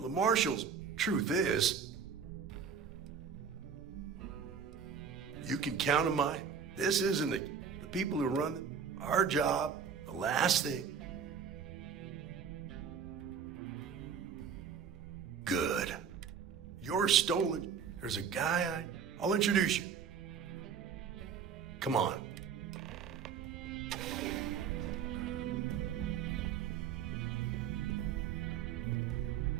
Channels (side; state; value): left; quieter; 6.9 dB